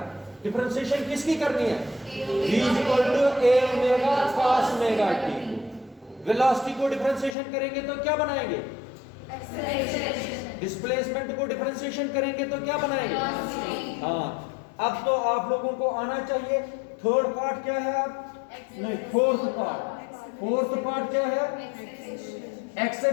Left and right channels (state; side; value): drops out; right; at 7.4 s